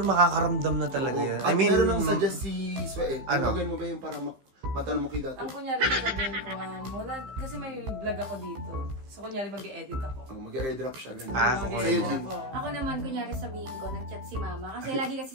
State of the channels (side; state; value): left; late; 15 ms